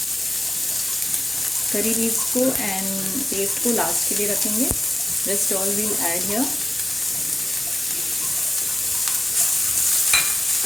Curry leaves को एंड पेस्ट को लास्ट के लिए रखेंगे. Rest all we'll add here.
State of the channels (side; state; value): left; noise; hum, 25 dB below the sound